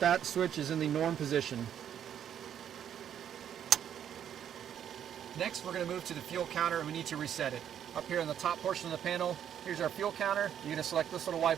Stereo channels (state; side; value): quieter; left; 9.5 dB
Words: switch is in the norm position. Next, we're going to move to the fuel counter and we need to reset it. Up here in the top portion of the panel, here's our fuel counter. You're going to select this little